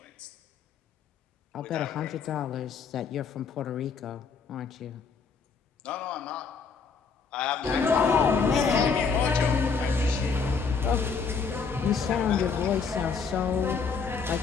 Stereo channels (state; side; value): quieter; right; 5.4 dB